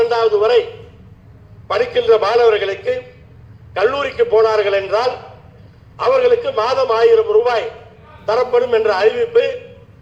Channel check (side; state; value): both; identical; correlation 1.00